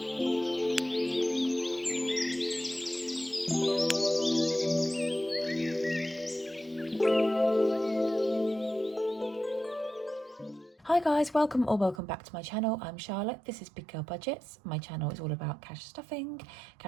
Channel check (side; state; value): left; drops out; at 12.0 s